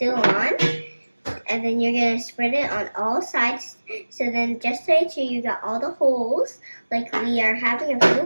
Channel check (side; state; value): both; inverted; correlation -1.00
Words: on, and then you're gonna spread it on all sides. So then, just to make sure you got all the holes, like we are having a